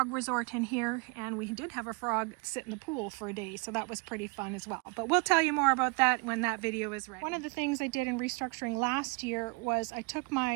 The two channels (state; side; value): quieter; left; 28.9 dB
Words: resort in here, and we did have a frog sit in the pool for a day, so that was pretty fun as well. But we'll tell you more about that when that video is ready. One of the things I did in restructuring last year was I took